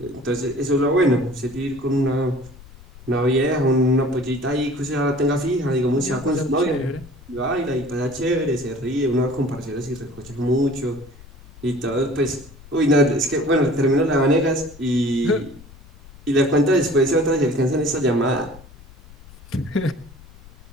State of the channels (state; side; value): noise; left; rumble, 21 dB below the sound